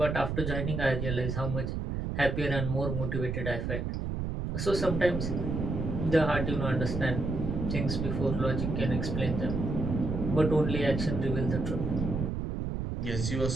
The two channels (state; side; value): noise; right; rumble, 2 dB below the sound